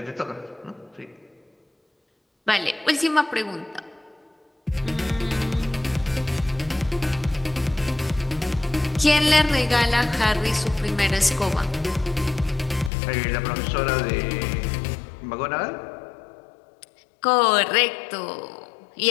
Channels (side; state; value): right; drops out; at 12.9 s